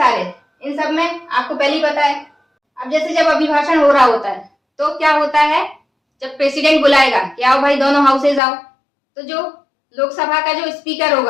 इन सब में आपको पहले ही पता है। अब जैसे जब अभिभाषण हो रहा होता है तो क्या होता है, जब प्रेसिडेंट बुलाएगा कि आओ भाई दोनों हाउसेज आओ, तो जो लोकसभा का जो स्पीकर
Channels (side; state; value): right; drops out; at 8.4 s